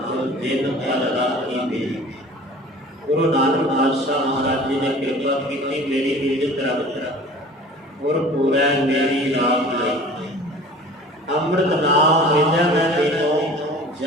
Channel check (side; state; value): both; normal; correlation 0.44